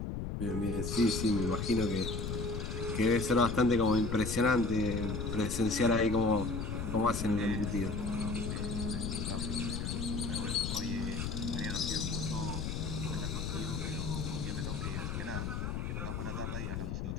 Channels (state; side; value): noise; left; rumble, 3 dB below the sound